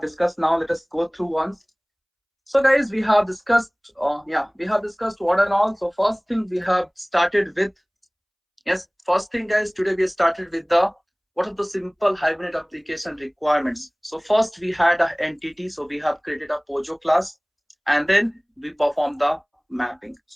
discussed now. Let us go through once. So guys, we have discussed, we have discussed what and all. So first thing we have started with, yes, first thing, guys, today we started with the what are the simple Hibernate application requirements. So first we had an entity, so we have created a Pojo class, and then we perform the mapping.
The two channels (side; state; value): both; identical; correlation 1.00